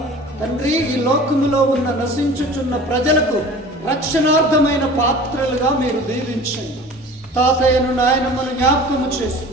తండ్రి ఈ లోకములో ఉన్న నశించుచున్న ప్రజలకు రక్షణార్థమైన పాత్రలుగా మీరు దీవించండి. తాతయ్యను నాయనమ్మను జ్ఞాపకము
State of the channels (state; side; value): normal; both; correlation 0.41